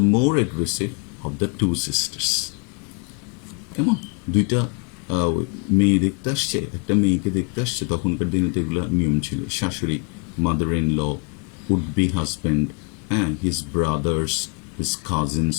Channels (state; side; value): quieter; right; 33.5 dB